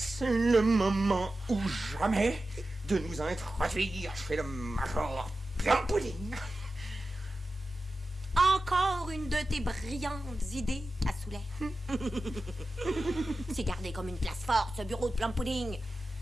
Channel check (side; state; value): both; normal; correlation 0.93